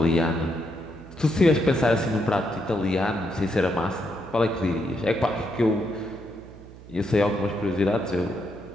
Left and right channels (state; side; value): noise; right; hum, 18 dB below the sound